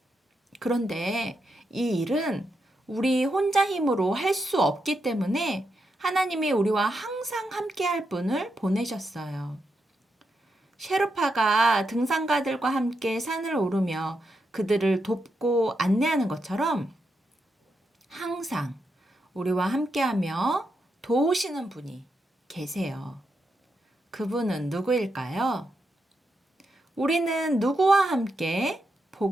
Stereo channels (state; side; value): normal; both; correlation 0.84